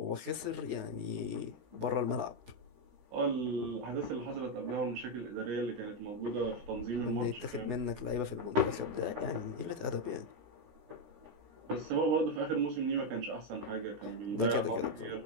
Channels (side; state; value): left; late; 16 ms